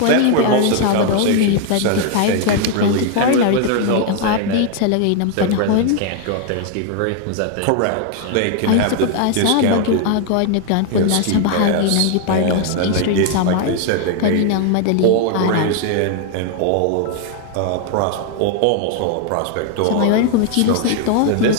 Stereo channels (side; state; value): both; different; correlation 0.00